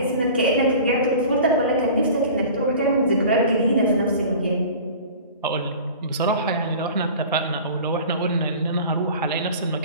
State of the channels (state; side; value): inverted; both; correlation -0.40